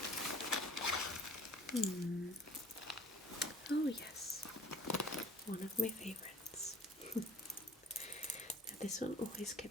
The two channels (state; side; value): normal; both; correlation 0.48